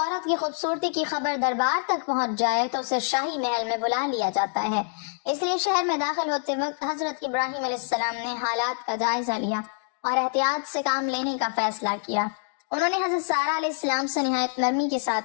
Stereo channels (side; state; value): right; silent; 61 dB below the other